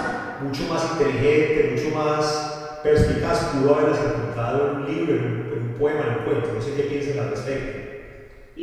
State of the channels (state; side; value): identical; both; correlation 1.00